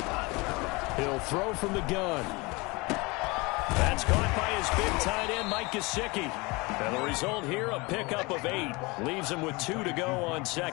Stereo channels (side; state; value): right; quieter; 25.6 dB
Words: He'll throw from the gun. That's caught by his big tight end, Mike Gesicki. And the result here, a pickup of 8. Leaves him with 2 to go on